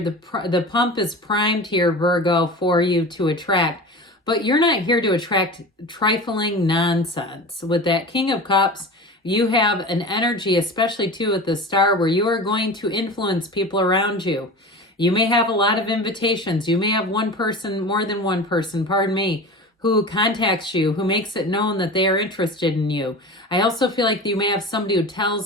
pump is primed here, Virgo, for you to attract. But you're not here to attract trifling nonsense. With that King of Cups, you have an energy, especially too with the Star, where you are going to influence people around you. You may have a lot of invitations. You may have one person, more than one person, pardon me, who contacts you, who makes it known that they are interested in you. I also feel like you may have somebody who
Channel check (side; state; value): both; normal; correlation 0.32